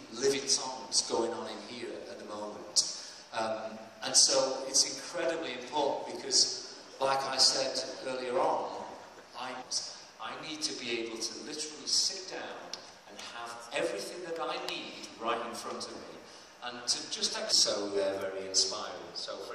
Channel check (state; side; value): identical; both; correlation 1.00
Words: living songs going on in here at the moment. And so it's incredibly important because, like I said earlier on, I need to be able to literally sit down and have everything that I need right in front of me, and to just so they're very inspiring. So,